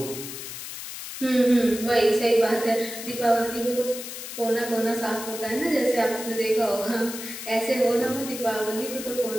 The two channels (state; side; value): noise; left; hiss, 9 dB below the sound